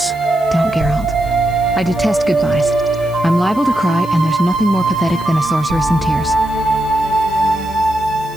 Don't, Geralt. I detest goodbyes. I'm liable to cry, and there's nothing more pathetic than a sorceress in tears.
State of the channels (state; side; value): noise; left; hiss, 22 dB below the sound